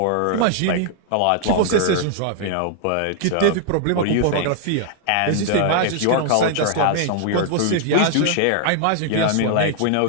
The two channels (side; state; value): both; different; correlation 0.00